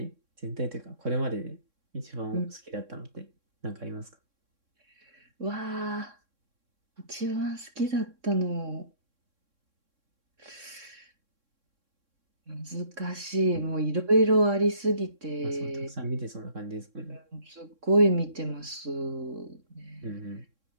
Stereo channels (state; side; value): late; left; 3.6 ms